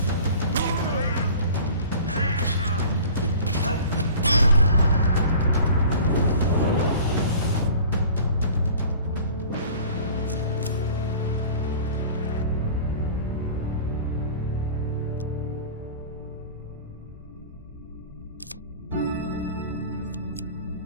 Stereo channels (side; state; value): both; inverted; correlation -0.43